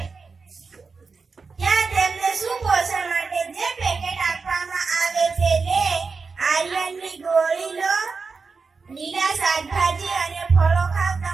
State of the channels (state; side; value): quieter; left; 4.7 dB